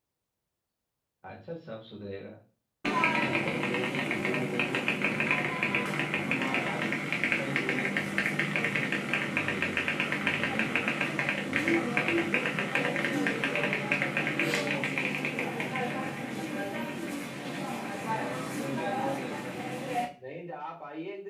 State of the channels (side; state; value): both; identical; correlation 1.00